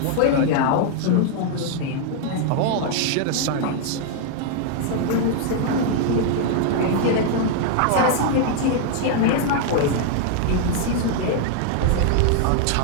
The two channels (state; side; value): different; both; correlation 0.00